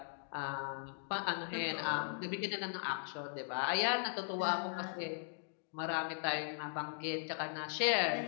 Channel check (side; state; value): right; silent; digital silence